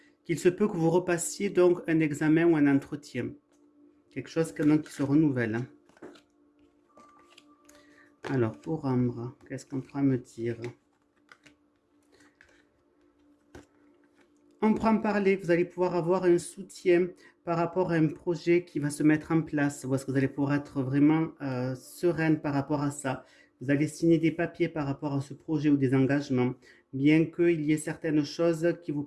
qu'il se peut que vous repassiez donc un examen ou un entretien. Quelque chose donc, qui se renouvelle. Alors, pour Ambre, qu'est-ce qu'on pourra me dire? On prend parler, vous allez pouvoir avoir un soutien par rapport à un projet qui va se mettre en place, ou est-ce que vous allez pouvoir être vraiment sereine par rapport à ça. Vous allez signer des papiers par rapport à ce projet ou des engagements, bien qu'il y ait certaines choses qui vous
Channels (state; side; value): identical; both; correlation 1.00